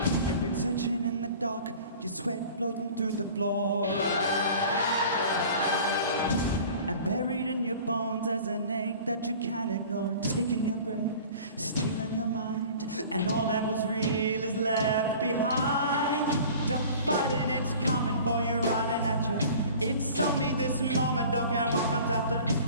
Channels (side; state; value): both; inverted; correlation -0.44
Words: You've been searching in the dark, your sweat floating through the floor. And buried in your bones as an ache that you can't ignore. Taking your breath, stealing your mind, and all that was real is left behind. Don't fight it, it's coming for you, running at you. It's only this moment, don't care what comes after.